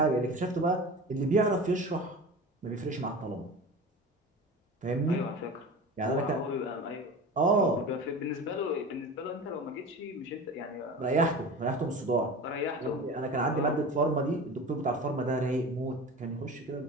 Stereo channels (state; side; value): normal; both; correlation 0.33